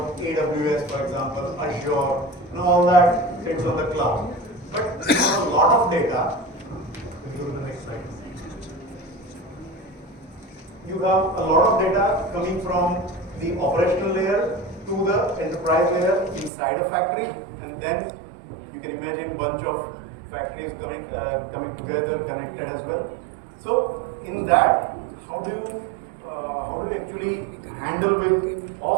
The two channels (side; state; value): left; drops out; at 16.5 s